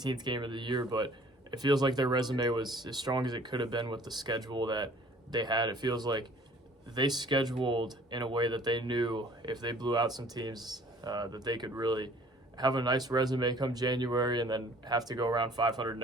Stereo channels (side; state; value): both; normal; correlation 0.53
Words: game of the year, but it feels like their resume was as strong as it could have been with the schedule that they had. It feels like they scheduled in a way that they knew if they blew out some teams that they could really have a nice resume come January and then have to go around 500